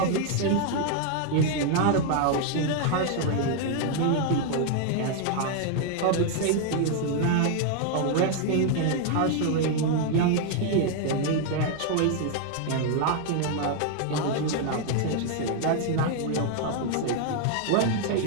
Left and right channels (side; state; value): both; different; correlation 0.00